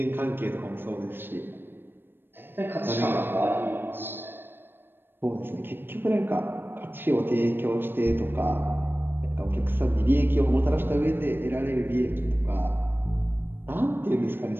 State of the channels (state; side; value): late; left; 0.098 ms